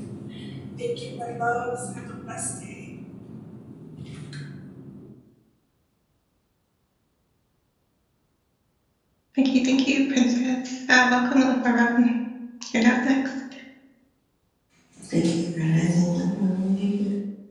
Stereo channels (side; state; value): both; identical; correlation 1.00